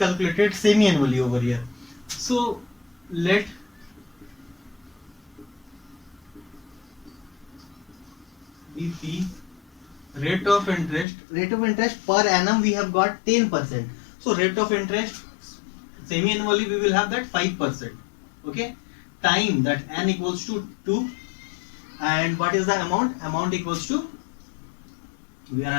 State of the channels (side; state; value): right; drops out; at 11.1 s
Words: semi-annually over here. So let BP rate of interest per annum we have got 10%. So rate of interest semi-annually we will have that 5%. Okay, time, that n equals to 2, and what is the amount equals to, we are